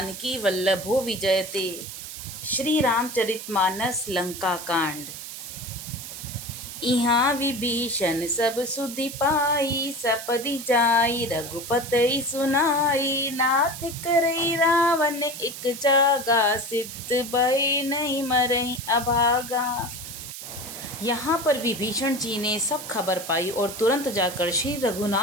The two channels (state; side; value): noise; right; hiss, 10 dB below the sound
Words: वल्लभो विजयते। श्री रामचरितमानस लंका कांड। इहाँ विभीषण सब सुधि पाई, सपदि जाई रघुपति सुनाई। नाथ करई रावण एक जागा, सिद्ध भय नहीं मरहि अभागा। यहाँ पर विभीषण जी ने सब खबर पाई और तुरंत जाकर श्री